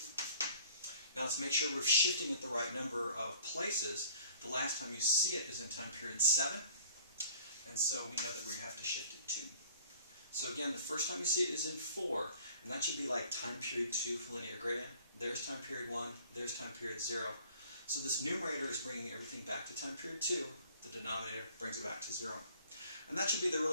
Now let's make sure we're shifting it the right number of places. The last time you see it is in time period 7, and so we know that we have to shift it 2. So again, the first time you see it is in 4, and that should be like time period 2 for linear gradient. There's time period 1, there's time period 0. So this numerator is bringing everything back to time period 2. The denominator brings it back to 0. And that should be the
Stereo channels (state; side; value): inverted; both; correlation -0.52